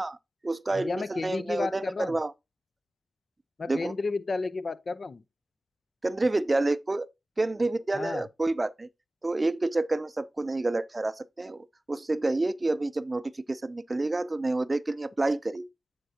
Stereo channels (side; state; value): both; normal; correlation 0.97